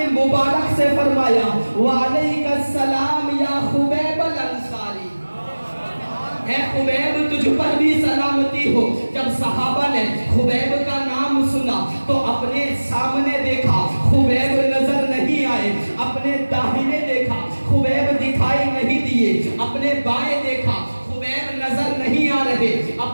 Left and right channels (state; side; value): inverted; both; correlation -1.00